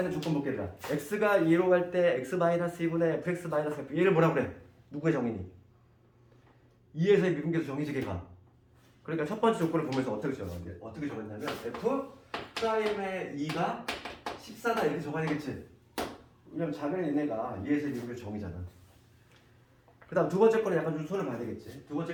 있는 조건 볼게. 얘들아 x가 2로 갈 때 x-2분의 fx-f 얘를 뭐라 그래? 누구의 정의니? 2에서의 미분계수 정의지 걔가. 그러니까 첫 번째 조건을 보면서 어떻게 정했냐면 f 프라임의 2가 14다 이렇게 적어야 되겠지. 왜냐면 작은 얘네가 2에서의 미분계수 정의잖아. 그 다음 두 번째 거는 약간 좀 손을 봐야 되겠지. 두 번째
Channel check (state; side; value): identical; both; correlation 1.00